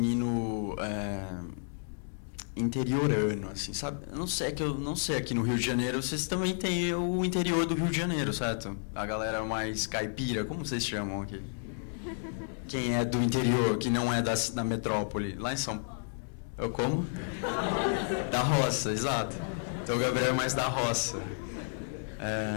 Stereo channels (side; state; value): right; silent; digital silence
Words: interiorano, assim, sabe? Eu não sei aqui no Rio de Janeiro, vocês também têm o interior do Rio de Janeiro, certo? A galera mais caipira, como vocês chamam aqui? Quem é do interior, que não é da metrópole? Lá em São Paulo. Eu como? Da roça, exato. Então o Gabriel é mais da roça.